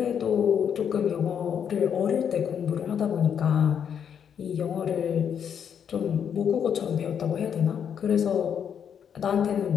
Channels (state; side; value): quieter; right; 8.1 dB